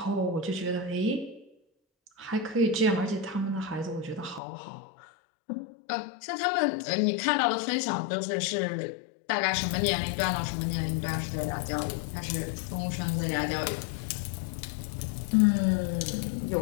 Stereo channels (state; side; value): drops out; right; at 4.4 s